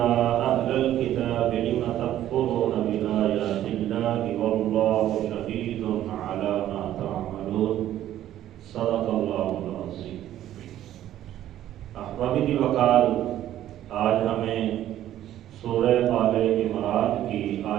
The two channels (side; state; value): left; quieter; 12.5 dB